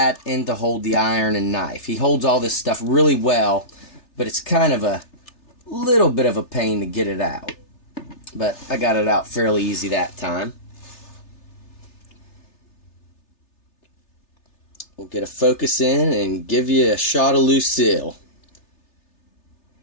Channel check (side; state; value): right; late; 3.3 ms